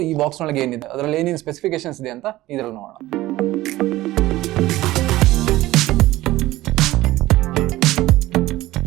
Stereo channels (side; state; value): left; quieter; 17.0 dB